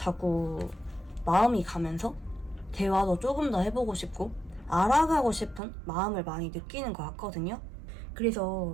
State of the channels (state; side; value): drops out; left; at 5.6 s